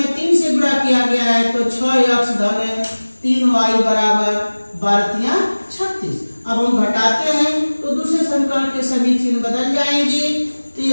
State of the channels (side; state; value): both; inverted; correlation -1.00